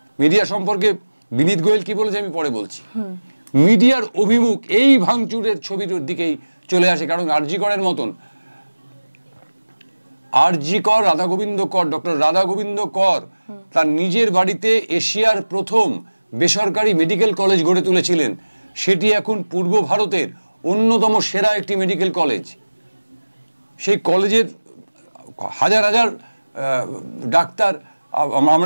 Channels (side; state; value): both; inverted; correlation -1.00